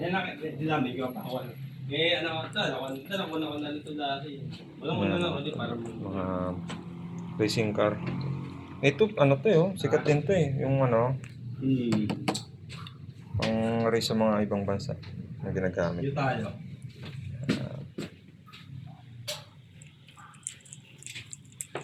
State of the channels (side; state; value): both; identical; correlation 1.00